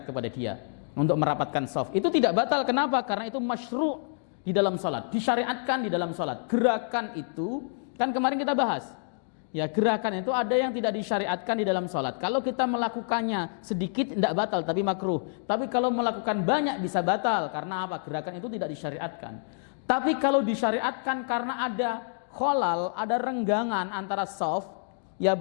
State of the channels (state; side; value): silent; right; digital silence